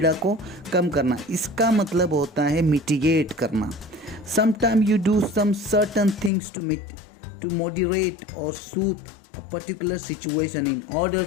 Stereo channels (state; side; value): drops out; right; at 6.3 s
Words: को कम करना, इसका मतलब होता है मिटिगेट करना। Sometimes you do some certain things to moderate or soothe a particular situation in order